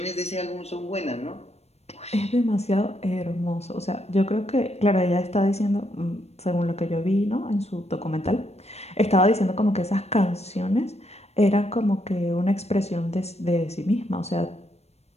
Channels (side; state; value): right; late; 0.31 ms